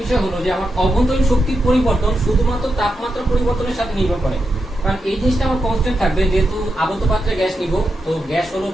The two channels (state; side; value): normal; both; correlation 0.86